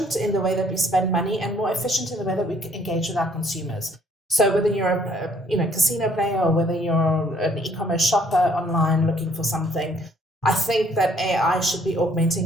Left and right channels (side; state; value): both; normal; correlation 0.62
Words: in the way that we spend money and more efficient in the way that we engage with our consumers. So whether you're a casino player or whether you're an e-commerce shopper online looking for something, I think that AI should be